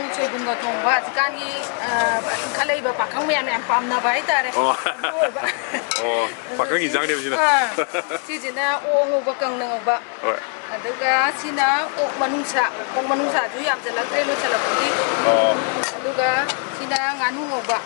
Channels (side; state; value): right; quieter; 38.8 dB